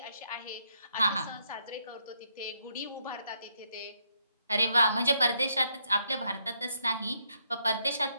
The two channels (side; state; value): both; inverted; correlation -0.76